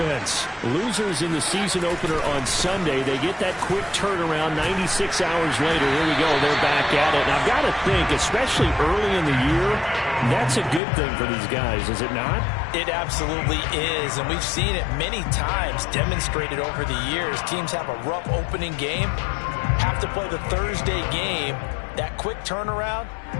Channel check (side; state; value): right; drops out; at 10.8 s